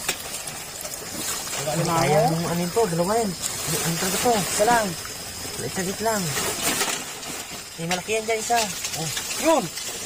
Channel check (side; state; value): both; identical; correlation 1.00